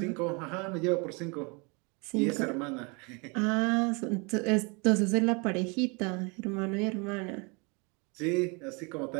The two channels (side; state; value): left; quieter; 31.0 dB